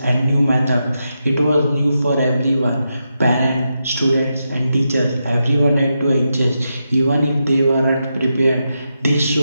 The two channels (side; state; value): both; inverted; correlation -0.86